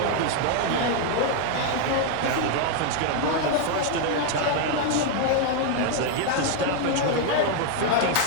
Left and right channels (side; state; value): both; different; correlation 0.00